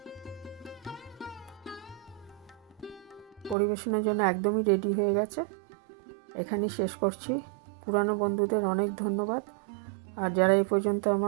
পরিবেশনের জন্য একদমই রেডি হয়ে গেছে, এখানেই শেষ করছি। পুরানো বন্ধুদের অনেক ধন্যবাদ, আর যারা এই পর্যন্ত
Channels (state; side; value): drops out; left; at 3.6 s